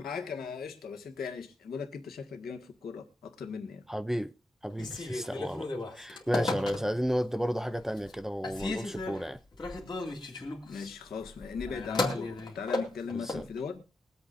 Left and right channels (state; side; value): normal; both; correlation 0.87